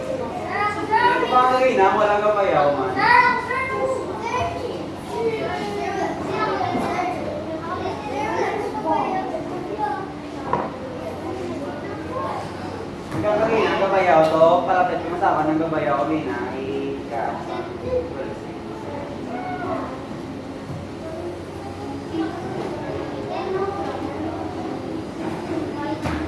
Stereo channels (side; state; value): both; identical; correlation 1.00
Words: Ito pa ang gawin ha? Walang kapayaw man. Ang gawin ang gabayaw to, palapit ko masama ng gabayaw kami na